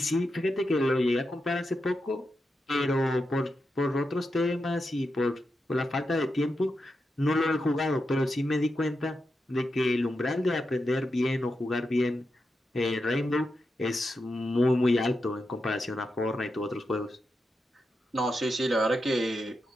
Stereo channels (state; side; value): normal; both; correlation 0.87